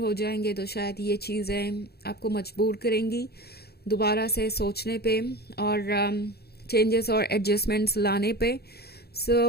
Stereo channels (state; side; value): late; right; 0.46 ms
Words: जाएंगे, तो शायद ये चीज़ें आपको मजबूर करेंगी दोबारा से सोचने पे और चेंजेस और एडजस्टमेंट्स लाने पे।